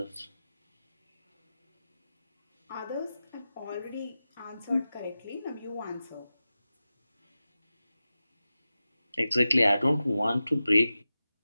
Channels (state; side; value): inverted; both; correlation -0.94